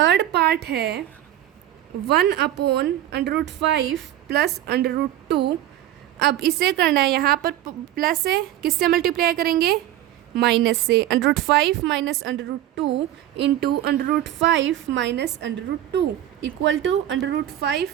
पार्ट है 1/√5 प्लस √2। अब इसे करना है, यहाँ पर प्लस है, किससे मल्टीप्लाई करेंगे, माइनस से। √5 minus √2 into √5 minus √2 equal to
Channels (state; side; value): quieter; left; 12.8 dB